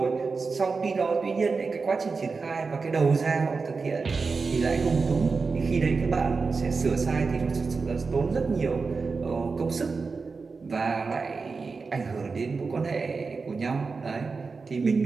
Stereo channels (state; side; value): quieter; left; 4.5 dB